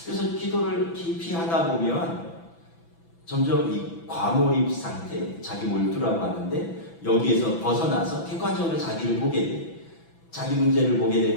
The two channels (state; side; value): late; right; 6.0 ms